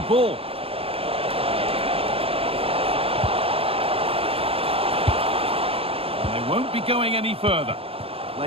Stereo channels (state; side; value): late; left; 0.28 ms